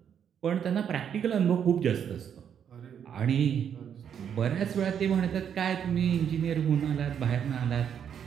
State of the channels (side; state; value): left; quieter; 8.3 dB